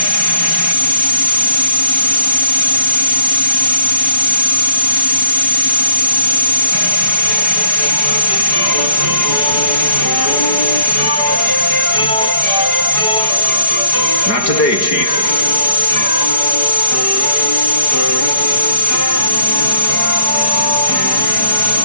Not today, Chief.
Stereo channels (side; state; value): right; late; 4.8 ms